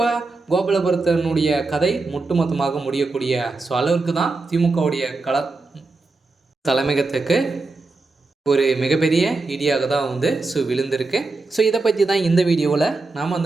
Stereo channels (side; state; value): left; quieter; 3.6 dB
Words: கோபாலபுரத்தினுடைய கதை ஒட்டுமொத்தமாக முடியக்கூடிய அளவுக்கு தான் திமுகவுடைய தலைமையகத்துக்கு ஒரு மிகப்பெரிய இடியாக தான் விழுந்திருக்கு. இதை பற்றி தான் இந்த வீடியோவில் நாம்